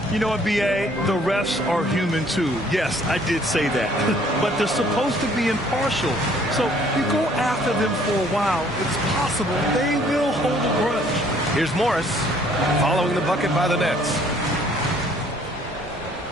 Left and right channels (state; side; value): normal; both; correlation 0.60